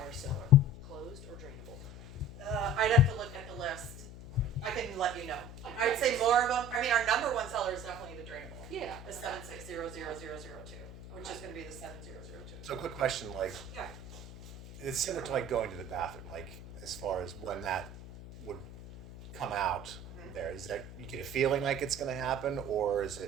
seller? Closed or drainable? I'd have to look at the list. I can let you know. I'd say more of them. I mean, our number one seller is definitely the drainable. Yeah. The 7600002, which is going to be the 7002. So quick question, like, Yeah. it's similar to like going to the bathroom, like as far as when that would come out there, is that, you get a feeling like it's gonna happen, or is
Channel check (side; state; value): left; noise; hum, 13 dB below the sound